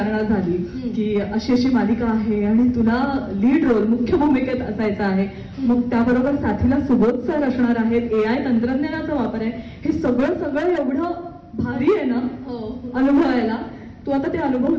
झाली की अशी अशी मालिका आहे आणि तुला लीड रोल मुख्य भूमिकेत असायचं आहे, मग त्याबरोबर साथीला सुबोध सर असणार आहेत, AI तंत्रज्ञानाचा वापर आहे, हे सगळं एवढं भारी आहे ना अनुभवायला. तू आता ते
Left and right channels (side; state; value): both; identical; correlation 1.00